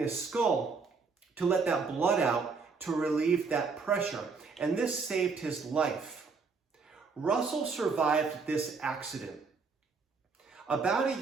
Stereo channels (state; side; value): quieter; left; 4.8 dB